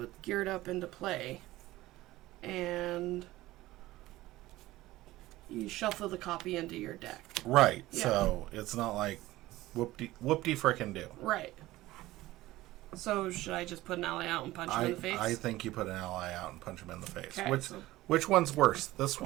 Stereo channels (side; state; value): left; quieter; 17.2 dB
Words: geared up into play, and you shuffle the copy into your deck. Right. Yeah. So it's not like whoop-de frickin' do. Right. So should I just put an ally out and punch him in the face? I think you put an ally out and punch him in the face. Okay, Which one's worse, this